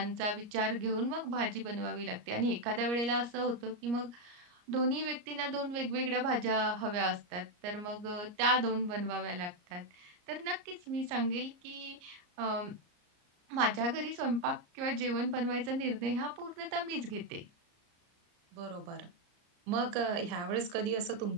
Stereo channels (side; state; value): left; late; 34 ms